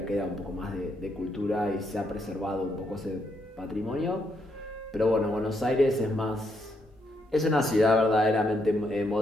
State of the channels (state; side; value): normal; both; correlation 0.77